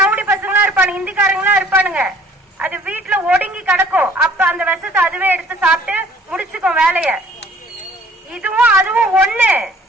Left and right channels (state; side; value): normal; both; correlation 0.55